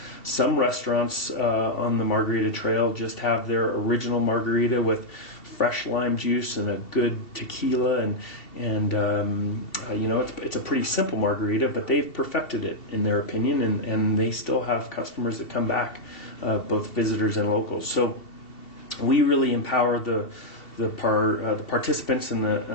Some restaurants on the Margarita Trail just have their original margarita with fresh lime juice and a good tequila, and it's a pretty simple margarita, but they've perfected it in their opinion, and they still have customers that come back, both visitors and locals. So we really empower the participants and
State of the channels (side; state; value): right; late; 2.7 ms